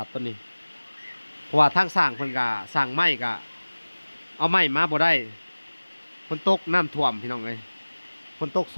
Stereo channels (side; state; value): both; inverted; correlation -1.00